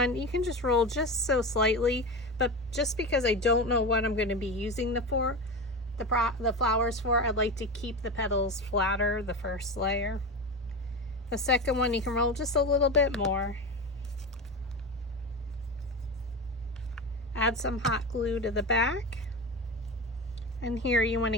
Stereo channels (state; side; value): normal; both; correlation 0.23